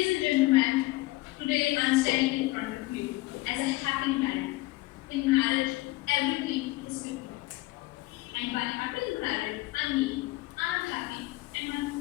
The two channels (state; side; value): quieter; right; 20.1 dB